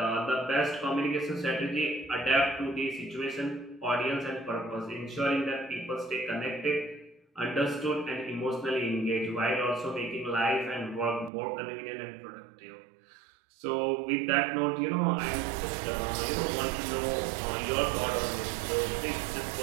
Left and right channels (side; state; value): left; drops out; at 11.3 s